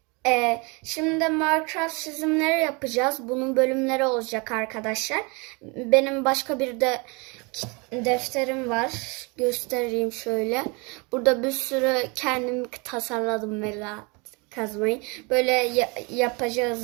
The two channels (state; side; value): quieter; left; 29.6 dB